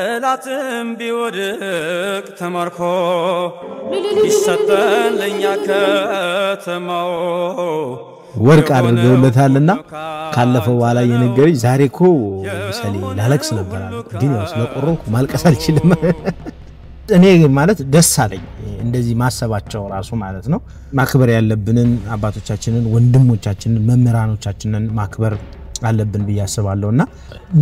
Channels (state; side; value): identical; both; correlation 1.00